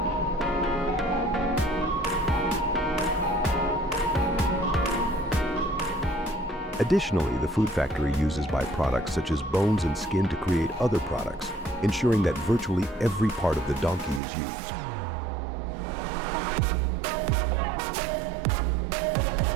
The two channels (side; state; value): left; drops out; at 14.2 s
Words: Additionally, the food factory uses byproducts such as bones and skin to create other products, ensuring that virtually every part of the donkey is used.